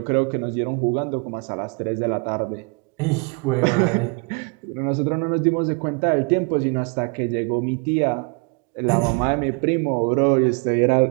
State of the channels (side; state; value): left; quieter; 33.1 dB